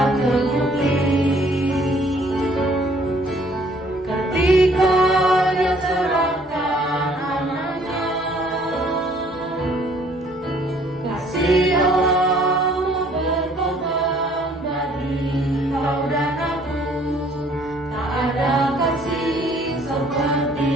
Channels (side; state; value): both; normal; correlation 0.60